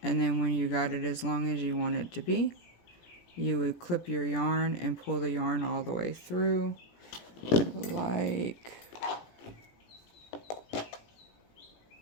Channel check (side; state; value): right; late; 17 ms